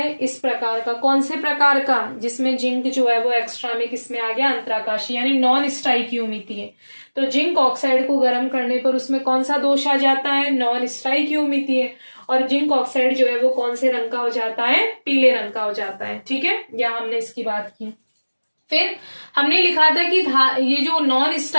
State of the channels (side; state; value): both; inverted; correlation -1.00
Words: इस प्रकार का। कौन से प्रकार का, जिसमें जिंक जो है वो एक्स्ट्रा में किसमें आ गया, अंतराकाशीय यानी नॉन स्टाइकियोमितीय। तो जिंक ऑक्साइड को गर्म करने पर उसमें कौन सा दोष आ जाता है, नॉन स्टाइकियोमितीय, और जिंक ऑक्साइड जो है वो कौन से रंग का हो जाता है, पीले रंग का हो जाता है। ठीक है, यहाँ हमने इसकी बात की। फिर हमने लिखा था कि ये जो नॉन